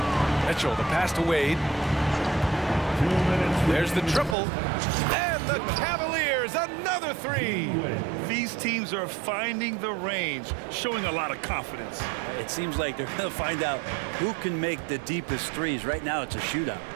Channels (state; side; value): drops out; left; at 4.4 s